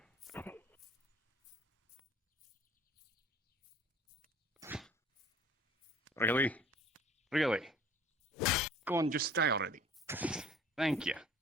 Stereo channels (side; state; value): both; normal; correlation 0.50